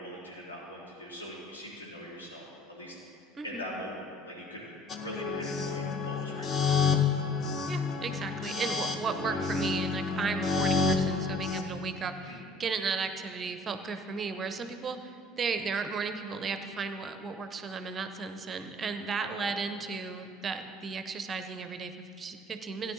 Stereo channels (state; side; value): normal; both; correlation 0.53